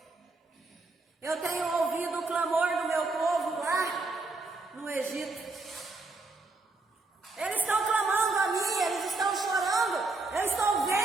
eu tenho ouvido o clamor do meu povo lá no Egito. Eles estão clamando a mim, eles estão chorando, eu estou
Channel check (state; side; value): quieter; left; 3.4 dB